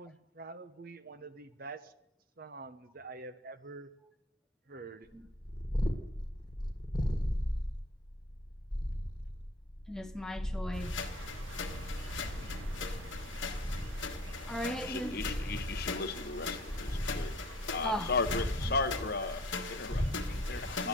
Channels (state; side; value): normal; both; correlation 0.50